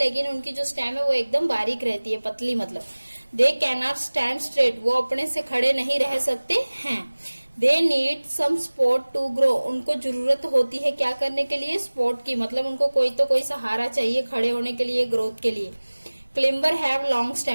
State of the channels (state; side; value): inverted; both; correlation -1.00